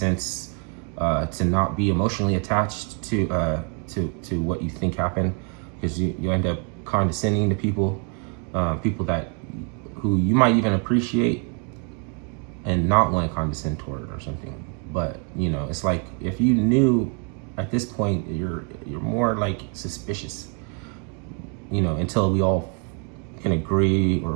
to not be emotionally attached to what you think happened, because you end up condescending to people who you might even appreciate and not want to condescend toward or something. But it's like, if you knew at this point, you're more suspicious, until we all can agree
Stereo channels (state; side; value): quieter; left; 37.7 dB